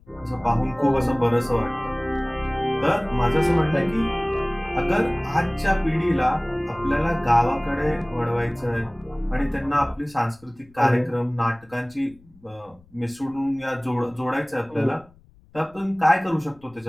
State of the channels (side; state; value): left; noise; rumble, 27 dB below the sound